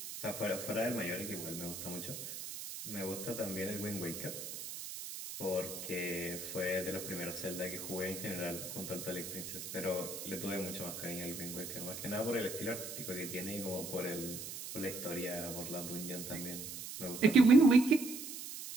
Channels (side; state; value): right; noise; hiss, 8 dB below the sound